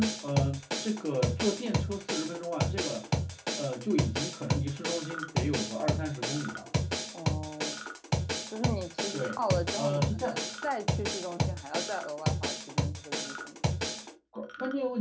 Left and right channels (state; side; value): identical; both; correlation 1.00